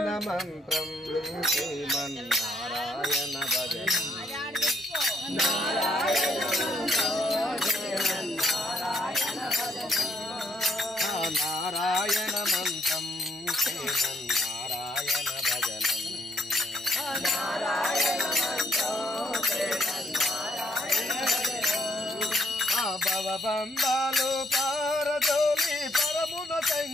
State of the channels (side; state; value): both; normal; correlation 0.70